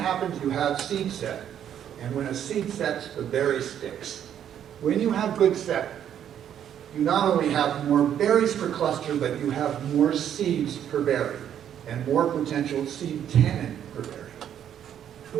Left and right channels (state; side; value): quieter; left; 9.7 dB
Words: you have seed set. And when a seed sets, the berry sticks. When you have good set, you not only have more berries per cluster, but you have more seeds per berry and more potential seed tannin per berry.